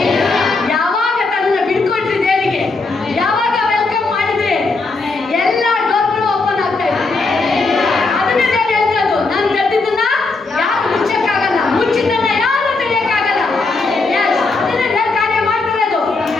ಯಾವಾಗ ತನ್ನ ಬಿಡ್ಕೊಟ್ರಿ ದೇವರಿಗೆ, ಯಾವಾಗ ವೆಲ್ಕಮ್ ಮಾಡಿದ್ರೆ ಎಲ್ಲ ಡೋರ್ಗಳು ಓಪನ್ ಆಗ್ತಾ ಇದೆ. ಅದನ್ನೇ ದೇವ್ರು ಹೇಳ್ತದ್ದು, ನಾನು ತೆರೆದಿದ್ದನ್ನ ಯಾರು ಮುಚ್ಚಕ್ಕಾಗಲ್ಲ, ಮುಚ್ಚಿದ್ದನ್ನ ಯಾರು ತೆರೆಯಕ್ಕಾಗಲ್ಲ. ಎಸ್, ಅದನ್ನೇ ದೇವ್ರು ಕಾರ್ಯ ಮಾಡ್ತಾರೆ ಅದು.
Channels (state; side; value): quieter; right; 3.7 dB